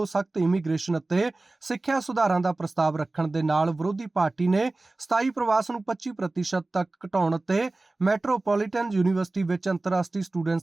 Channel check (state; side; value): quieter; left; 3.1 dB